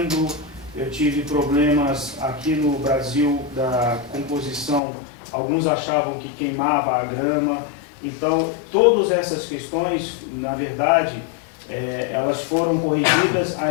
eu tive problemas aqui no Brasil da composição, alguns achavam que queimava a grama. Então todas essas questões, na verdade, elas foram corrigidas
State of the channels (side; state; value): right; drops out; at 4.8 s